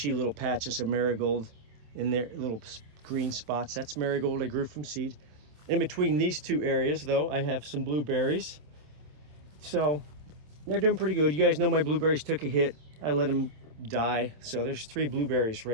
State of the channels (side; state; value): left; late; 26 ms